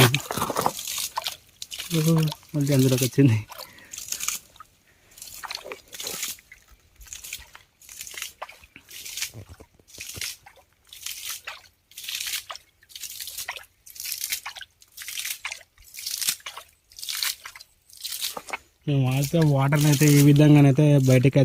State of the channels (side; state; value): both; identical; correlation 1.00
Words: మళ్ళీ అందులోకి వచ్చింది. మేము అయితే వాటర్ని అయితే ఈ విధంగానైతే బయటకు